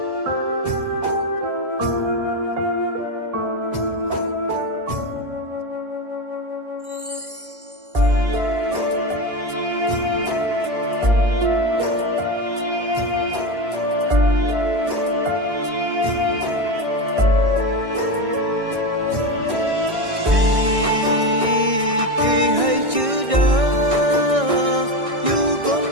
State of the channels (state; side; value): late; left; 1.6 ms